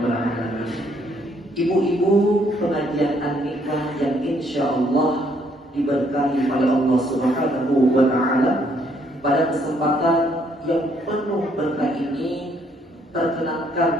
alamin. Ibu-ibu pengajian An-Nikmah yang insyaallah diberkahi oleh Allah Subhanahu wa taala, pada kesempatan yang penuh berkah ini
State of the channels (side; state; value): both; normal; correlation 0.68